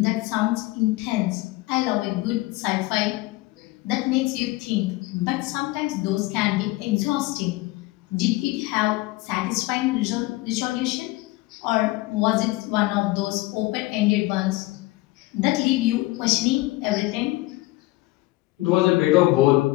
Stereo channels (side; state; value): right; quieter; 20.1 dB